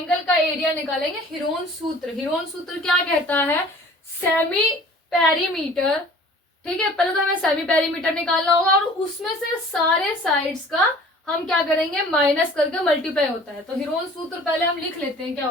का एरिया निकालेंगे। हीरोन सूत्र, हीरोन सूत्र क्या कहता है, सेमी पेरीमीटर। ठीक है, पहले तो हमें सेमी पेरीमीटर निकालना होगा और उसमें से सारे साइड्स का हम क्या करेंगे, माइनस करके मल्टीप्लाई होता है। तो हीरोन सूत्र पहले हम लिख लेते हैं क्या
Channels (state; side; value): normal; both; correlation 0.48